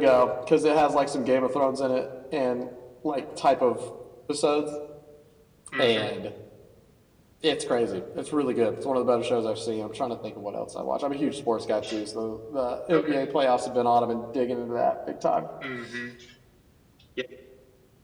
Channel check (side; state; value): both; identical; correlation 1.00